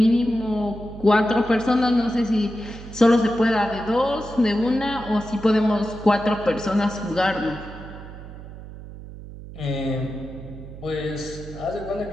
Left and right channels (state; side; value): noise; right; hum, 14 dB below the sound